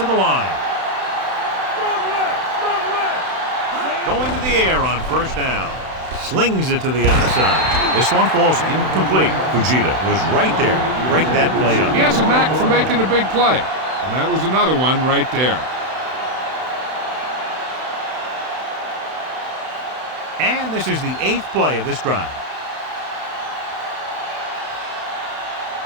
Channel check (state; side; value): late; left; 31 ms